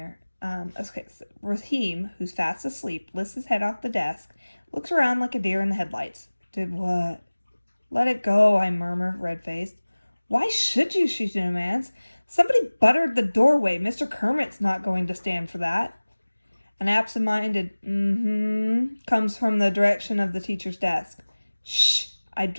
So Raheem, who's fast asleep, lifts his head off the desk, looks around like a deer in the headlights. Did what? Let it go, I murmur, red-faced. Why should you, she demands. Somebody buttered the doorway. Mr. Kermit's not going to stand for that. An absent-minded comes from the direction of the teacher's desk. Shh! I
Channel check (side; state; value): both; inverted; correlation -1.00